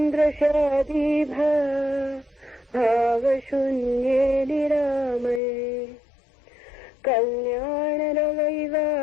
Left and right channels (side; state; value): right; drops out; at 5.4 s